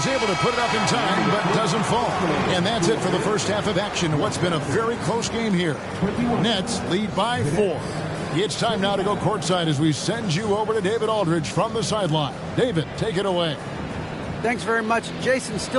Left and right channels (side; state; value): both; identical; correlation 1.00